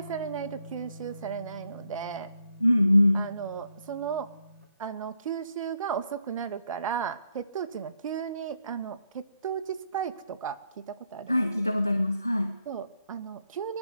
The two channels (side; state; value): both; inverted; correlation -0.76